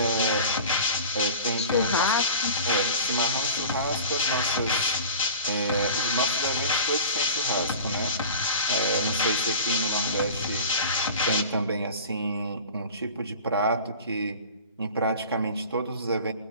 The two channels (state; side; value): inverted; both; correlation -0.39